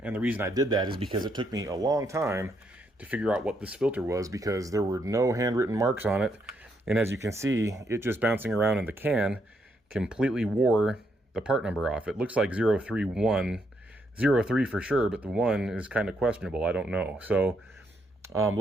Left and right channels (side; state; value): both; normal; correlation 0.76